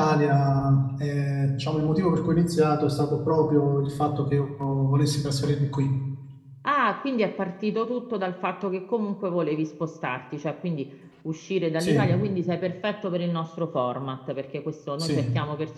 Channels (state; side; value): identical; both; correlation 1.00